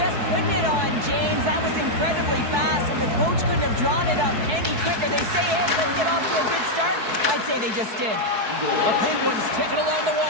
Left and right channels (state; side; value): late; left; 4.6 ms